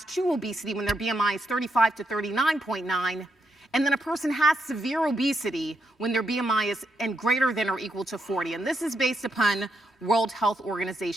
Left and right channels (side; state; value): both; normal; correlation 0.80